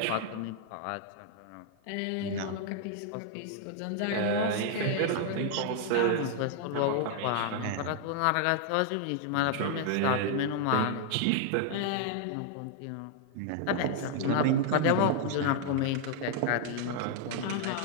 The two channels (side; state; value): both; different; correlation 0.00